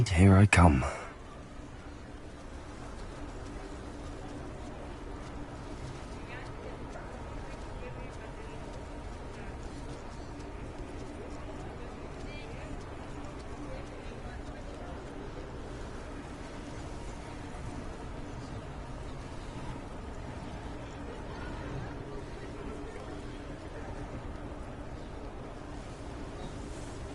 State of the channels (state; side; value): identical; both; correlation 1.00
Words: here I come.